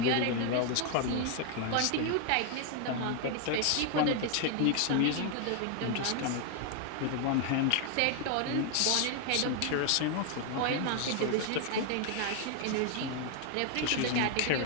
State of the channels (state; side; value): different; both; correlation 0.00